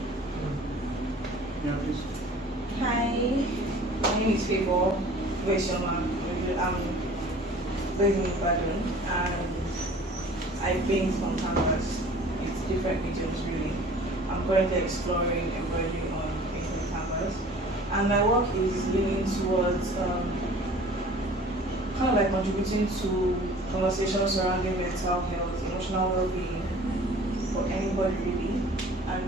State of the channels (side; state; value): both; normal; correlation 0.47